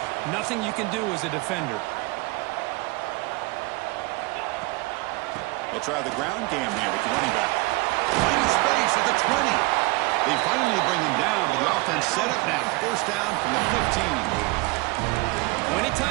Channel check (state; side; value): quieter; left; 24.4 dB